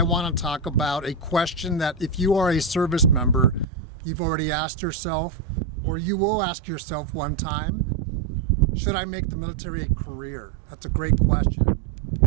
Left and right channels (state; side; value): drops out; left; at 3.7 s